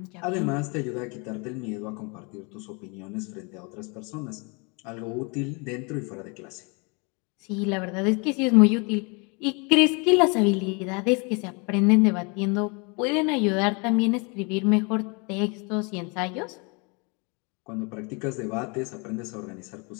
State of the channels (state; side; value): quieter; right; 31.5 dB